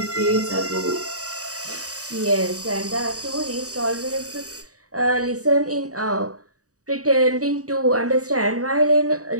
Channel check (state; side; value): late; left; 0.66 ms